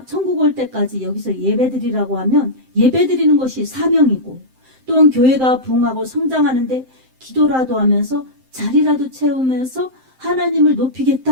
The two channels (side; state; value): left; late; 7.7 ms